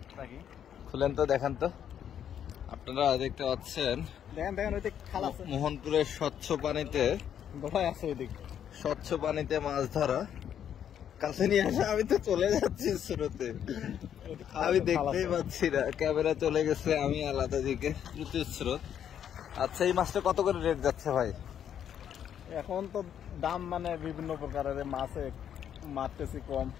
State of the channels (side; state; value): right; quieter; 9.3 dB